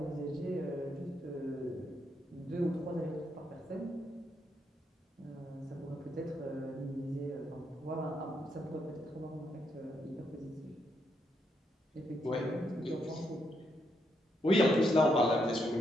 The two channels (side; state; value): both; normal; correlation 0.78